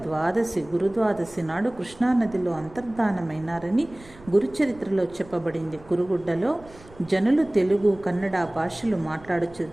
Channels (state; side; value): noise; right; rumble, 22 dB below the sound